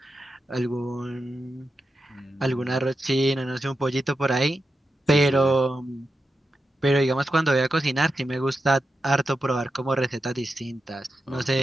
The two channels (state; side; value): normal; both; correlation 0.89